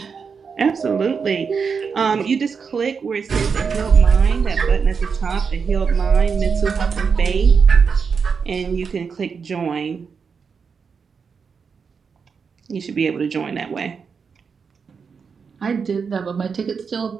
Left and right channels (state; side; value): quieter; left; 5.8 dB